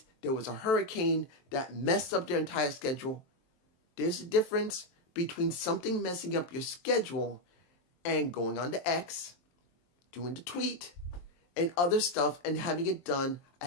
there was a hurricane that messed up their entire schedule. There's a difference between something messing up your schedule and going on to X, doing the tweet, and other stuff and having it done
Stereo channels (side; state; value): right; late; 23 ms